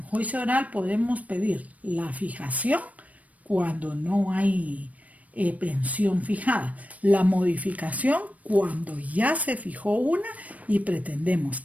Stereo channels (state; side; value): late; left; 0.069 ms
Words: juicio oral podemos pedir la fijación cuando no hay pensión fijada, la modificación cuando ya se fijó una y pretendemos